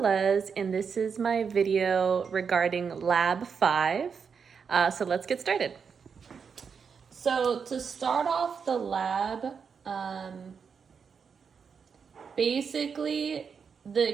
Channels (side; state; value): left; quieter; 6.2 dB